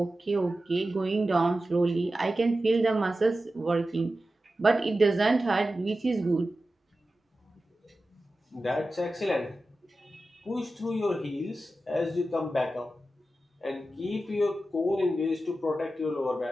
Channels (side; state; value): both; normal; correlation 0.93